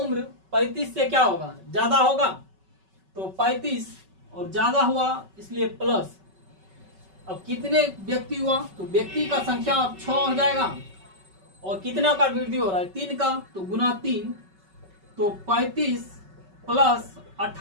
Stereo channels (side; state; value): left; late; 5.3 ms